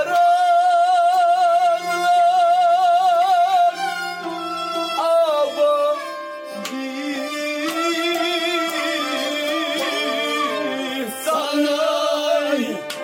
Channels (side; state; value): both; identical; correlation 1.00